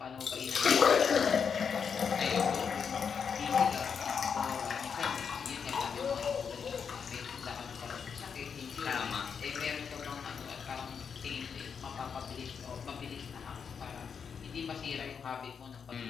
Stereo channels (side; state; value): right; quieter; 6.5 dB